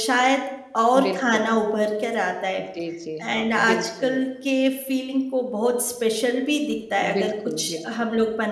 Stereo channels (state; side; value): identical; both; correlation 1.00